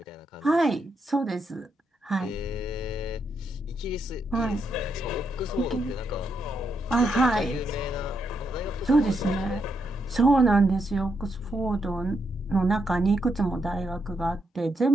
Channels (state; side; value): normal; both; correlation 0.80